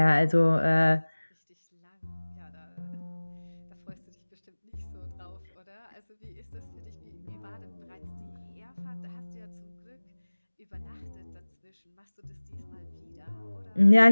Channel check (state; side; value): inverted; both; correlation -1.00